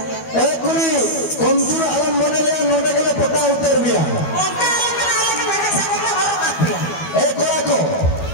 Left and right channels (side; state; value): right; late; 12 ms